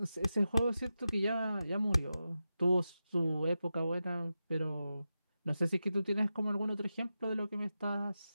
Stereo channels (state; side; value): inverted; both; correlation -0.91